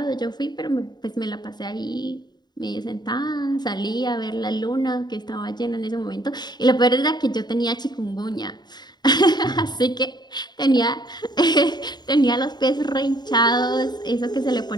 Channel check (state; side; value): late; right; 0.20 ms